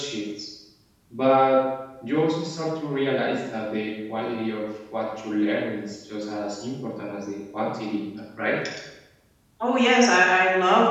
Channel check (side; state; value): both; identical; correlation 1.00